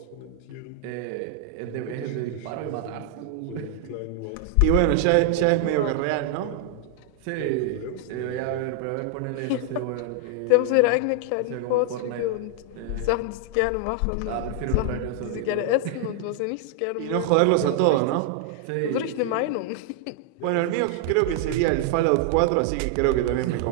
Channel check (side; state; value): both; different; correlation 0.00